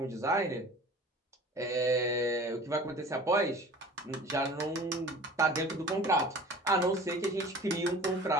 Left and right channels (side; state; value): both; normal; correlation 0.43